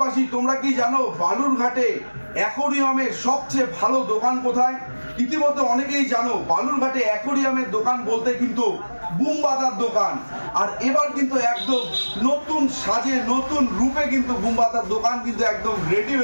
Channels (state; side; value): inverted; both; correlation -1.00